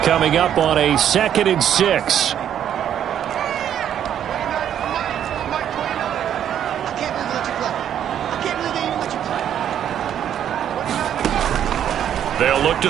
Coming up on a 2nd and 6. They'll look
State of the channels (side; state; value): left; quieter; 9.8 dB